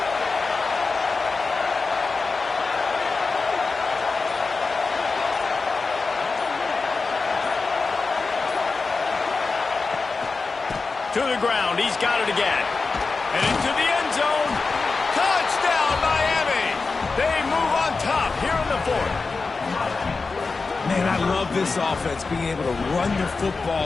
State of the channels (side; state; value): right; quieter; 4.2 dB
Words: To the ground, he's got it again. And into the end zone. Touchdown, Miami! They move on top here in the 4th. Man, I love this offense, being able to run the